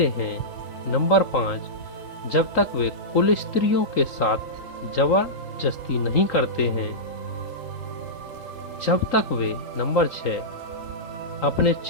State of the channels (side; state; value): right; late; 3.8 ms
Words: हैं, नंबर 5 जब तक वे कुल स्त्रियों के साथ जबरदस्ती नहीं करते हैं, जब तक वे नंबर 6 अपने